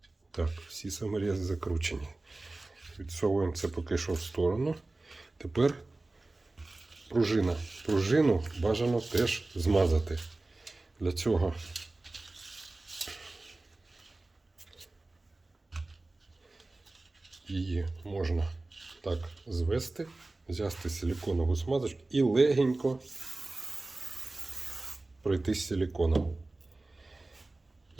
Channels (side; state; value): left; quieter; 3.1 dB